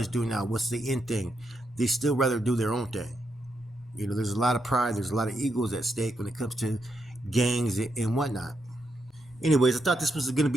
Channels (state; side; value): normal; both; correlation 0.82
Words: doing now, what's the in thing. They still rather do their own thing. There's a lot of pride, there's a lot of egos at stake when it comes to gangs and whatnot. Anyways, I thought this was going to